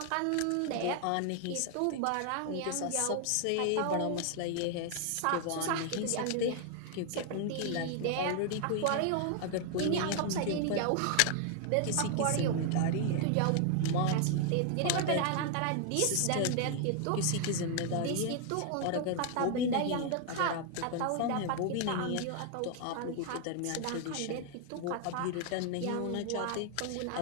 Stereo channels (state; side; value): different; both; correlation 0.00